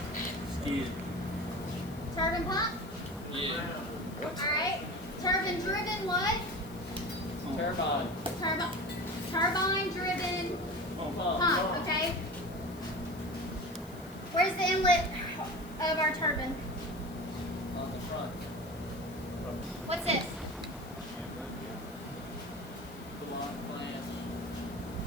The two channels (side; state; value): left; noise; hiss, 21 dB below the sound